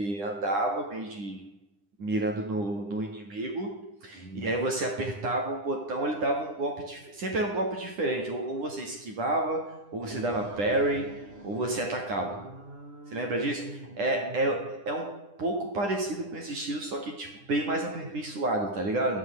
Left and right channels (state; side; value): late; left; 10 ms